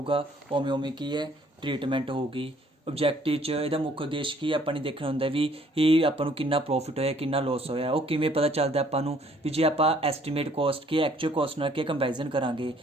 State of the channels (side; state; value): both; normal; correlation 0.61